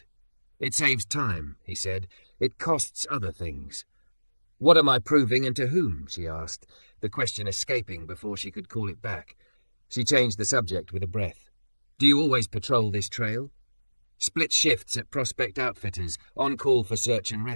"It saves time," he said. "It costs other things." "What am I proving and to whom?" she asked, the question escaping before she could call it back. She changed the subject with a breath. "Do you always patrol this trail?" "Split shifts at Prospect Outfitters, on call for search and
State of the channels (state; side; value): inverted; both; correlation -1.00